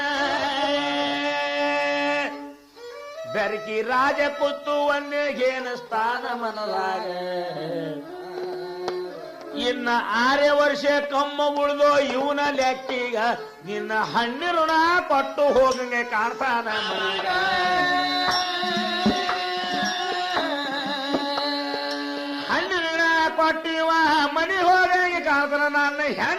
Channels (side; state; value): both; identical; correlation 1.00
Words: ಬೆರಕಿ ರಾಜ ಕೂತು ಒಂದೇಗೇನ ಸ್ಥಾನ ಮನದಾಗ ಇನ್ನ 6 ವರ್ಷ ಕಮ್ಮ ಉಳಿದೋ ಇವನ ಲೆಕ್ಕೀಗ ನಿನ್ನ ಹಣ್ಣಿ ಋಣ ಕೊಟ್ಟು ಹೋಗಂಗೆ ಕಾಣ್ತಾನ ಕೊಟ್ಟಿವ ಮನಿ ಹೋಗಿ ಕಾಣ್ತಾನ ನನ್ನ